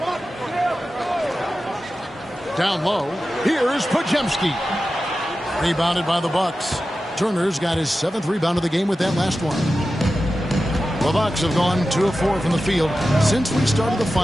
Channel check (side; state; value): both; normal; correlation 0.93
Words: Down low, here's Podziemski. Rebounded by the Bucks. Turner's got his 7th rebound of the game with that last one. The Bucks have gone 2 of 4 from the field since we started the